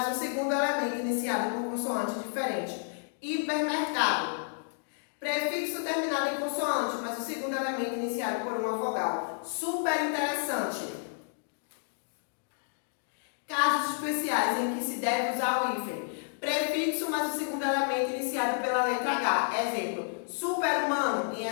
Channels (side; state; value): right; silent; digital silence